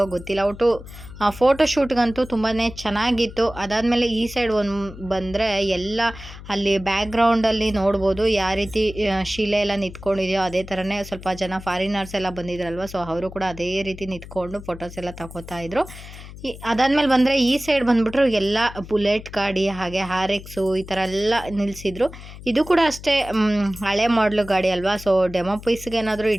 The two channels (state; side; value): noise; left; hum, 15 dB below the sound